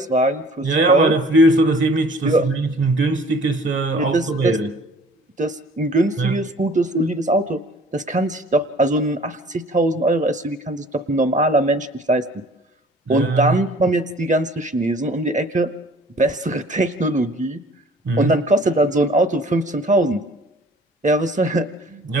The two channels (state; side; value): normal; both; correlation 0.51